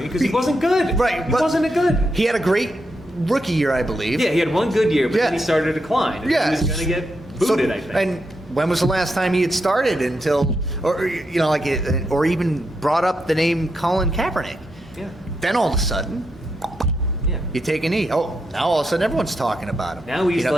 because he wasn't good. Right. He wasn't good. He had a great rookie year, I believe. Yeah, he had one good year, but then he started to decline. And he was going to get booted, I think. And when was the last time he had started or even brought up the name Colin Kaepernick? Yeah. Then all of a sudden, you take a knee. Oh, now all of a sudden everyone's talking about him. Now he's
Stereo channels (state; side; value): normal; both; correlation 0.83